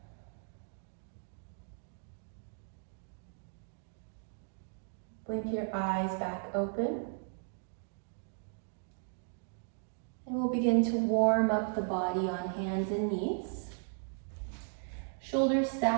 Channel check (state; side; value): silent; left; 54 dB below the other